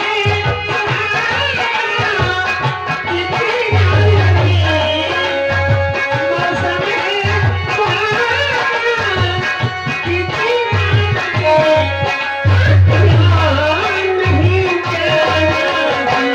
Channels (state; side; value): identical; both; correlation 1.00